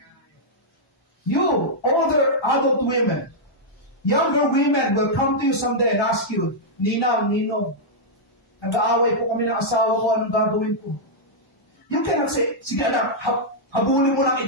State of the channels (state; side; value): normal; both; correlation -0.06